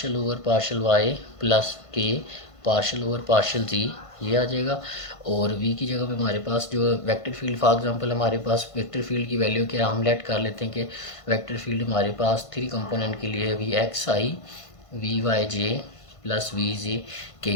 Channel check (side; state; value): right; late; 1.5 ms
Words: over partial Y plus K partial over partial Z, ये आ जाएगा। और v की जगह पे हमारे पास जो वेक्टर फील्ड, फॉर एग्जांपल हमारे पास वेक्टर फील्ड की वैल्यू क्या हम लेट कर लेते हैं कि वेक्टर फील्ड हमारे पास 3 कंपोनेंट के लिए V X I V Y J plus V J K.